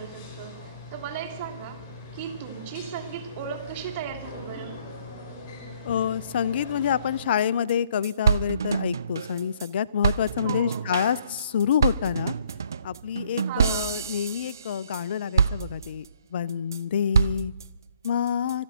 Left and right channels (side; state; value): both; inverted; correlation -0.65